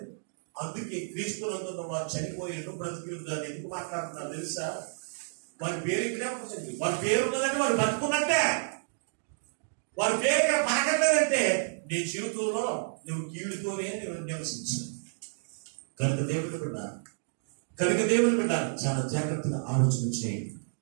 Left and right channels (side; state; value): left; silent; digital silence